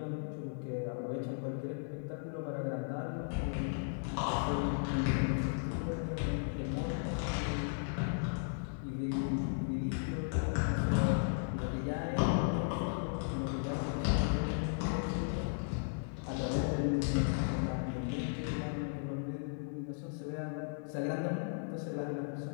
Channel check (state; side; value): silent; right; digital silence